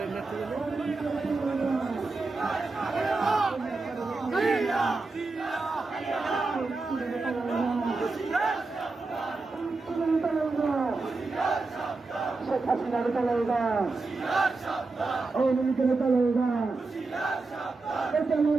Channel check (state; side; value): quieter; left; 3.7 dB